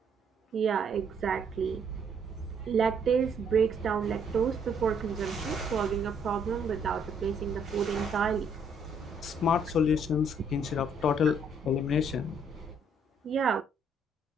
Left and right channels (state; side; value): normal; both; correlation 0.67